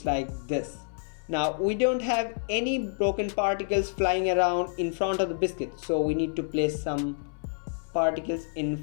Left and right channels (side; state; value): right; silent; 59 dB below the other